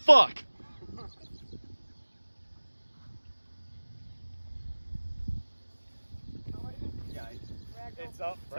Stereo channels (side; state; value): both; inverted; correlation -1.00